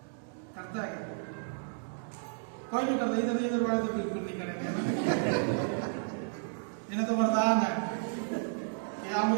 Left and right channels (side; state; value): left; silent; digital silence